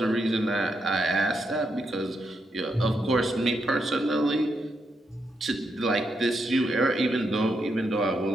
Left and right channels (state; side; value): normal; both; correlation 0.81